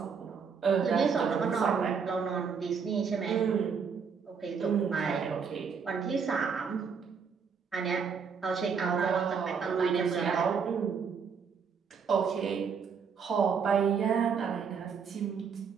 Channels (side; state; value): left; quieter; 6.1 dB